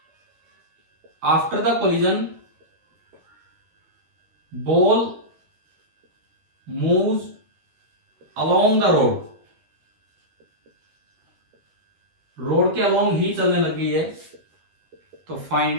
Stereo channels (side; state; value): left; late; 12 ms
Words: after the collision ball moves along the road, road के अलोंग ही चलने लग गई है, तो फाइंड